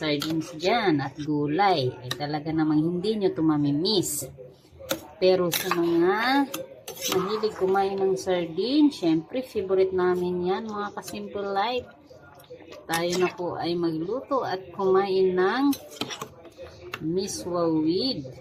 dyan at gulay. Ay talaga namang hindi nyo to mamimiss. Pero sa mga mahilig kumain ng sardines, syempre favorite namin yan, mga ka-simple life. Tayo na po ay magluto at kumain ng miswa with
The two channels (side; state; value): both; identical; correlation 1.00